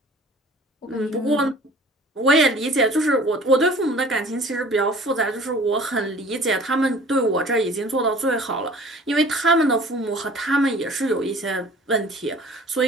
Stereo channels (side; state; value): both; normal; correlation 0.48